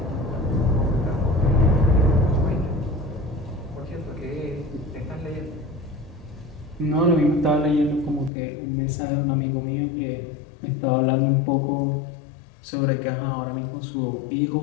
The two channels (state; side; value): drops out; right; at 8.3 s